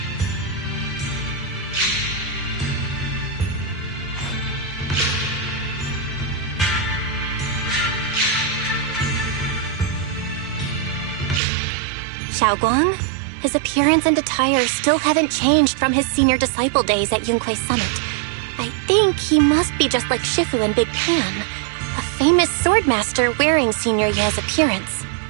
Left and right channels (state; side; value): drops out; left; at 11.4 s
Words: Xiaoguang? His appearance and attire still haven't changed from his senior disciple days at Yunque Summit. I think he must be just like Shifu and Big Pan, a famous swordmaster wearing Senior Ye's appearance.